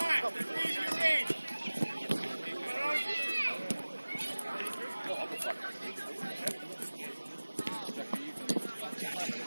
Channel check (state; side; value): inverted; both; correlation -1.00